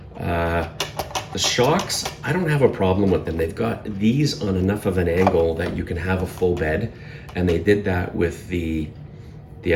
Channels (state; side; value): identical; both; correlation 1.00